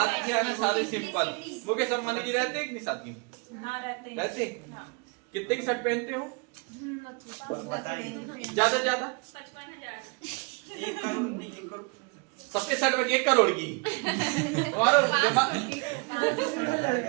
आना सादे सिंपल। मुकेश अंबानी जी रहते हैं कि नहीं सादगी में? रहते। कितने की शर्ट पहनते हो? ज्यादा ज्यादा 1 करोड़ नहीं, 1 करोड़ सबके शर्ट में 1 करोड़ की। तुम्हारा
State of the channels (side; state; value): left; quieter; 31.1 dB